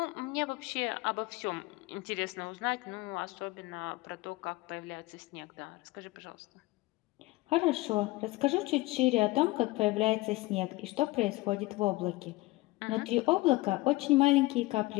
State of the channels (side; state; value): right; quieter; 20.6 dB